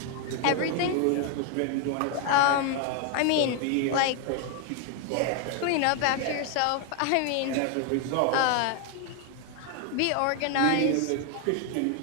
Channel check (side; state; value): both; different; correlation 0.01